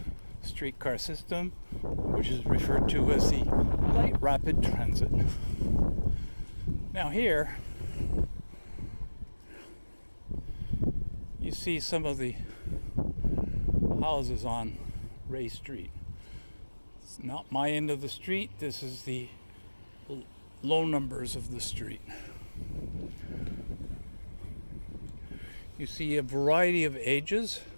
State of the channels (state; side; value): inverted; both; correlation -1.00